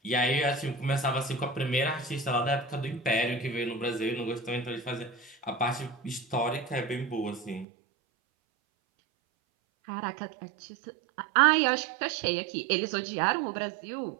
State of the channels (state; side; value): drops out; left; at 7.7 s